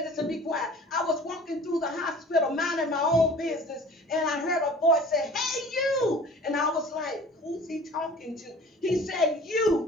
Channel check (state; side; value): normal; both; correlation 0.45